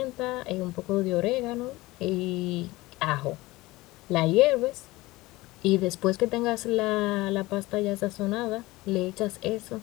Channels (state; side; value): quieter; right; 20.0 dB